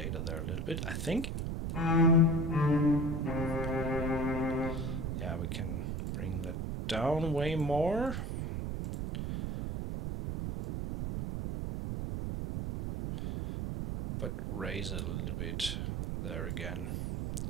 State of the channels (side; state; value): right; noise; rumble, 3 dB below the sound